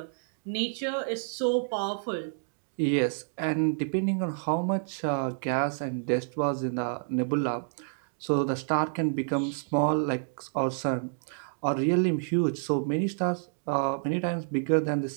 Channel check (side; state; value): left; silent; digital silence